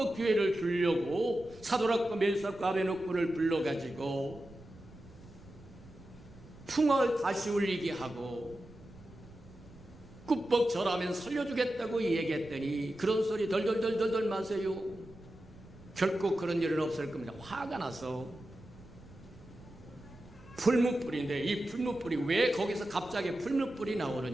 기회를 주려고 사도락과 메삭과 아베노코를 불러가지고 풍화를 다시 울리게 하고 꿀뻑 절하면 살려주겠다고 얘기했더니 그런 소리 덜덜덜덜 마세요. 결코 그런 일은 없을 겁니다. 화가 나서 풀무불인데 이 풀무불이 왜 거기서 갑자기 풀무불이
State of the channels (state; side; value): noise; right; rumble, 21 dB below the sound